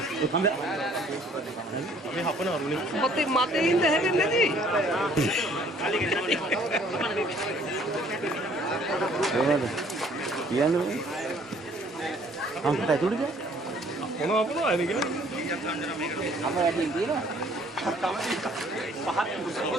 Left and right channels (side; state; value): both; normal; correlation 0.59